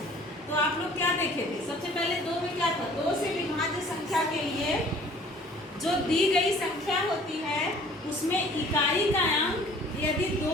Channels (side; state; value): both; normal; correlation 0.52